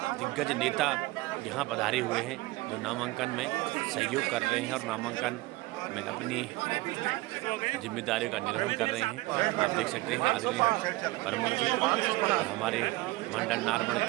नेता यहाँ पधारे हुए हैं जो नामांकन में सहयोग कर रहे हैं और नामांकन में अपनी जिम्मेदारियों का निर्वहन कर रहे हैं। आप देख सकते हैं आदरणीय प्रमुख जी और हमारे मंडल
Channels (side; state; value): left; quieter; 20.6 dB